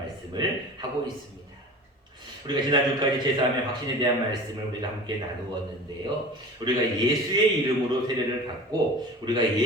하고 있습니다. 우리가 지난주까지 제사함의 확신에 대한 말씀을 우리가 함께 나누었는데요. 우리가 예수의 이름으로 세례를 받고 우리가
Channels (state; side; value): normal; both; correlation 0.37